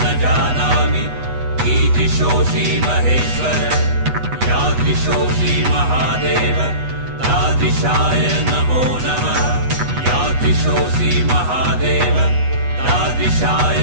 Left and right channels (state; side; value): late; left; 8.2 ms